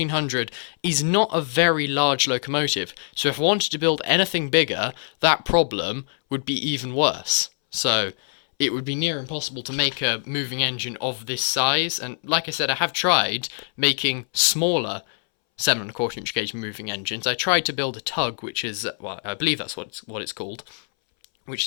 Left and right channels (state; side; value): silent; right; 63 dB below the other